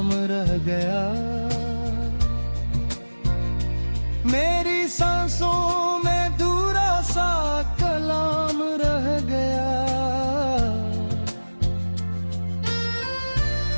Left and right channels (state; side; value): inverted; both; correlation -1.00